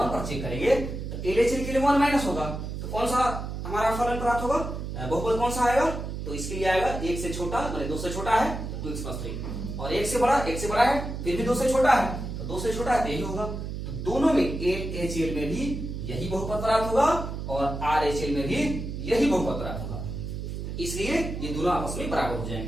पर चेक करेंगे तो LHL के लिए 1 माइनस होगा, तो कौन सा हमारा फलन प्राप्त होगा, बहुपद कौन सा आएगा, तो इसके लिए आएगा 1 से छोटा मतलब 2 से छोटा है तो 2x + 3, और 1 से बड़ा है फिर भी 2 से छोटा है, तो 2 से छोटा है तो यही होगा। तो दोनों में LHL में भी यही बहुपद प्राप्त होगा और RHL में भी यही बहुपद प्राप्त होगा, इसलिए ये दोनों आपस में बराबर हो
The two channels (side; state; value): right; noise; hum, 6 dB below the sound